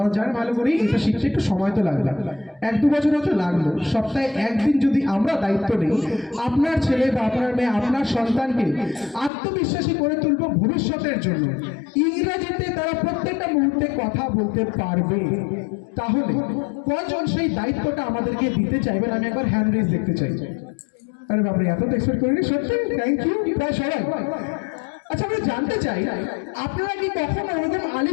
জানেন ভালো করেই এটা শিখতে একটু সময় তো লাগবে, 1-2 বছর হয়তো লাগলো, সপ্তাহে 1 দিন যদি আমরা দায়িত্ব নেই, আপনার ছেলে বা আপনার মেয়ে, আপনার সন্তানকে আত্মবিশ্বাসী করে তুলবো ভবিষ্যতের জন্য, ইংরেজিতে তারা প্রত্যেকটা মুহূর্তে কথা বলতে পারবে, তাহলে কজন সেই দায়িত্বটা আমাদেরকে দিতে চাইবেন? আমি একবার হ্যান্ড রেজ দেখতে চাই। আরে বাপরে, এত তো এক্সপেক্ট করিনি, সত্যি থ্যাংক ইউ, প্রায় সবাই। আচ্ছা, আমরা জানতে চাই, আপনারা কি কখনো ওরকম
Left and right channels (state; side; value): drops out; right; at 9.3 s